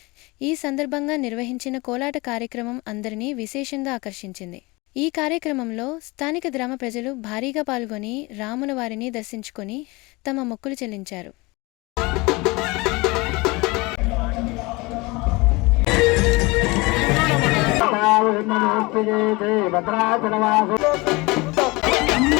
ఈ సందర్భంగా నిర్వహించిన కోలాట కార్యక్రమం అందరినీ విశేషంగా ఆకర్షించింది. ఈ కార్యక్రమంలో స్థానిక గ్రామ ప్రజలు భారీగా పాల్గొని రాములవారిని దర్శించుకొని తమ మొక్కులు చెల్లించారు.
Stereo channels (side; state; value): right; quieter; 24.3 dB